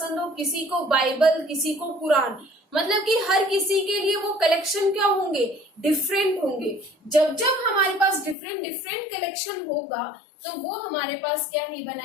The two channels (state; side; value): drops out; right; at 8.3 s